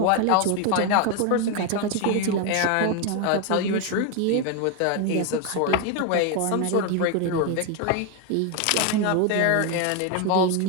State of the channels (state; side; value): different; both; correlation 0.01